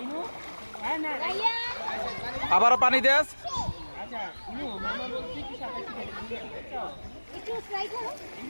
আবারও পানি দেস।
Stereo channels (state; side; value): inverted; both; correlation -1.00